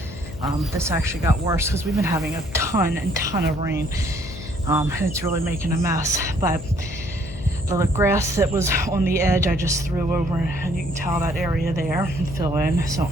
This actually got worse because we've been having a ton of rain, and it's really making a mess. But the grass that was on the edge, I just threw over, and you can tell that area there and fill in. So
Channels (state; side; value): noise; left; hum, 14 dB below the sound